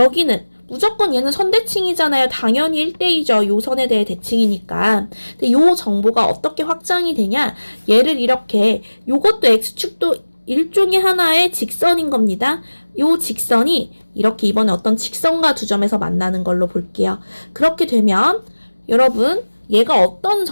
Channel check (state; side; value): inverted; both; correlation -1.00